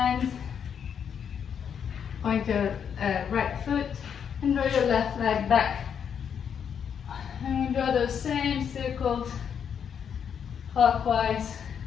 point your right foot, and draw your left leg back. And we draw those same circles clockwise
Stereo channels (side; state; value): right; quieter; 7.7 dB